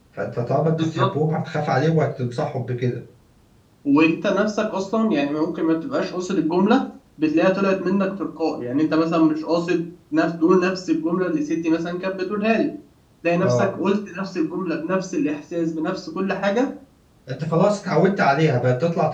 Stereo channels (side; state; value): both; identical; correlation 1.00